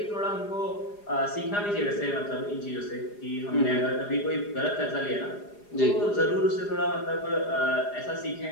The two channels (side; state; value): right; late; 4.9 ms